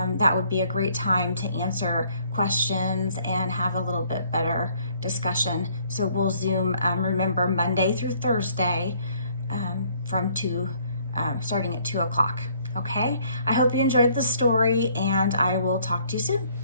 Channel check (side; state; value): both; inverted; correlation -0.63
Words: that would be a great time to answer questions and have a little bit better discussion. So we'll Zoom, remember, Monday through Thursday starting at 2 o'clock. Okay, I hope you enjoyed the story, and I will talk to you soon.